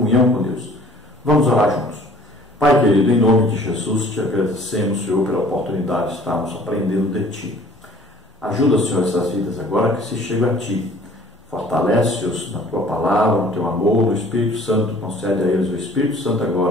com Deus. Vamos orar juntos. Pai querido, em nome de Jesus, te agradecemos, Senhor, pela oportunidade de estarmos aprendendo de Ti. Ajuda, Senhor, essas vidas agora que se chegam a Ti. Fortalece-os na Tua palavra, no Teu amor, no Espírito Santo. Concede a eles o Espírito Santo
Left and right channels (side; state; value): both; normal; correlation 0.52